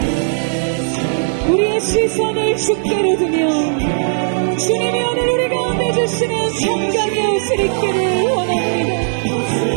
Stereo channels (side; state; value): left; silent; digital silence